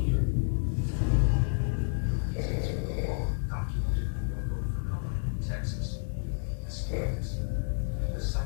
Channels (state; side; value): silent; right; 58 dB below the other